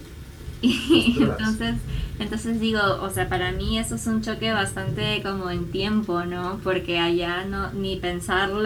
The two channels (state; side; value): identical; both; correlation 1.00